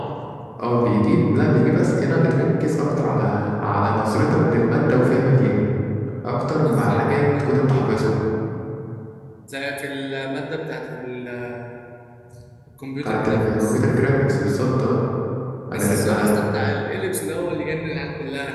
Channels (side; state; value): both; identical; correlation 1.00